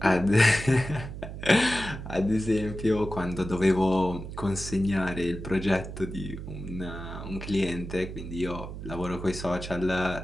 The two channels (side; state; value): right; noise; hum, 9 dB below the sound